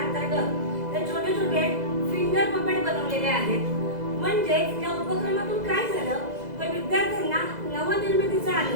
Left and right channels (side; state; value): left; late; 2.0 ms